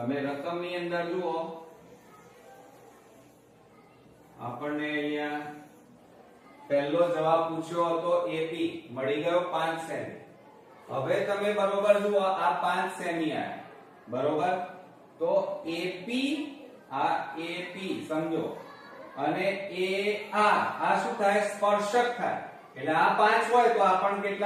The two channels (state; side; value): identical; both; correlation 1.00